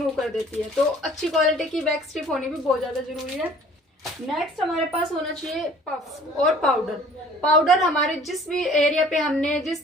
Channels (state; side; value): normal; both; correlation 0.52